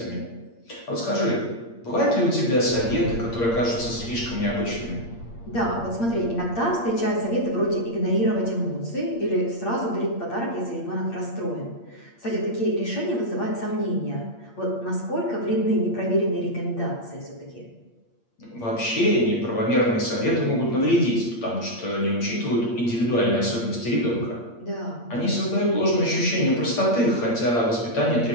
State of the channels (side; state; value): right; late; 8.6 ms